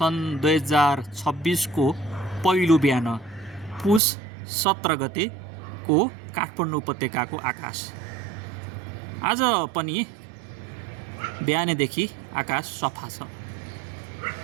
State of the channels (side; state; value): left; drops out; at 4.0 s